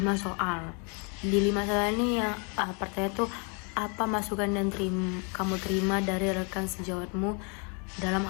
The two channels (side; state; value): right; quieter; 35.8 dB